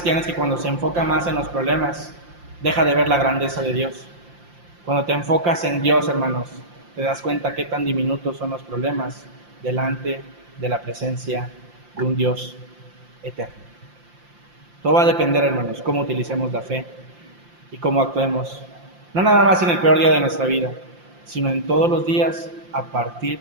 es que cuando se enfoca más en los problemas, deja de ver la grandeza de Dios. Cuando te enfocas en Dios, hermanos, te das cuenta qué tan diminutos son los problemas delante de la presencia de un Dios eterno. Todo va a depender, hermanos, cómo utilicemos la fe y cómo actuemos, no nada más en el peor día de nuestra vida, sino en todos los días a partir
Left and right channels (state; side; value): late; left; 5.7 ms